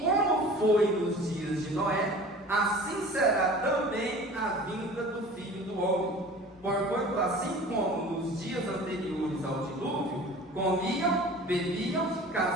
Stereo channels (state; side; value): normal; both; correlation 0.42